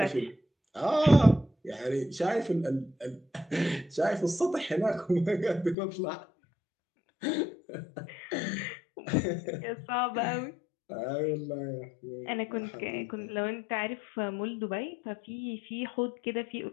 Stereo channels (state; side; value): drops out; right; at 5.8 s